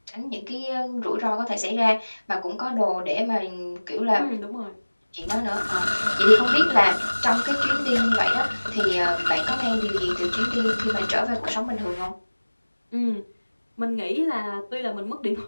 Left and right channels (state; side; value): inverted; both; correlation -1.00